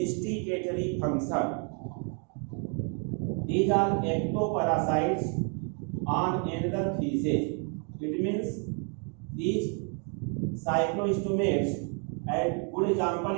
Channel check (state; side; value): quieter; left; 40.0 dB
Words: function. These are ectoparasites on another species. It means these cyclostomates, and good example